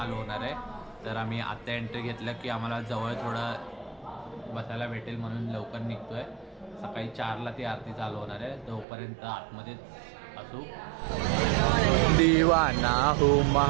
होणार आहे. तर आम्ही आत्ता एंट्री घेतलं की आम्हाला जवळ थोडं बसायला भेटेल म्हणून लवकर निघतो आहे. सकाळी 4ला ती आरती चालू होणार आहे. तोपर्यंत आतमध्येच असू. दीवाना हूँ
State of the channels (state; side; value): drops out; left; at 8.8 s